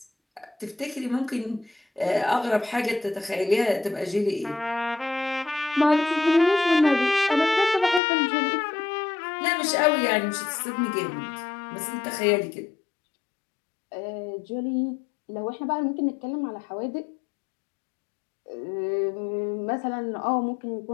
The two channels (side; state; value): right; drops out; at 8.0 s